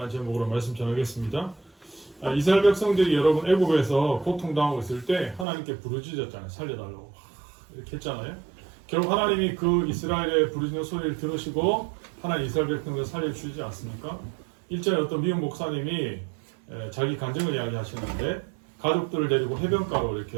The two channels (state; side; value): drops out; left; at 5.5 s